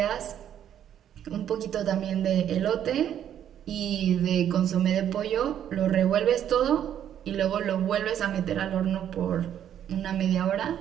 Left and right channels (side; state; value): left; quieter; 10.1 dB